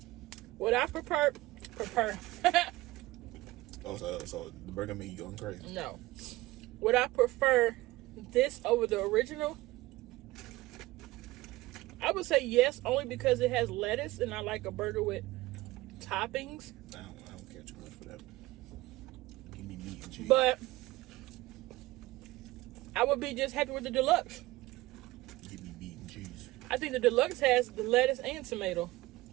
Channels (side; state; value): left; quieter; 18.9 dB